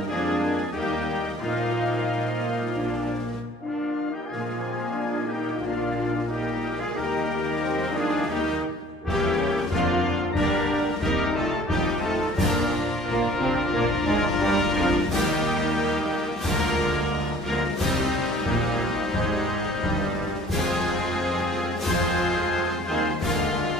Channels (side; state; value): both; normal; correlation 0.54